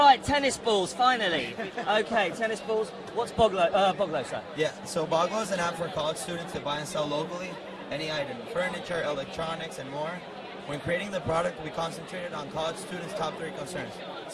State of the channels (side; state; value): both; identical; correlation 1.00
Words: tennis balls, finally. Okay, tennis balls. What's Boggles, sir? Yeah, so Boggles is an app for college students to buy and sell locally any item, furniture, electronics, and more. When creating the product, we concentrated on college students' top 3 concerns: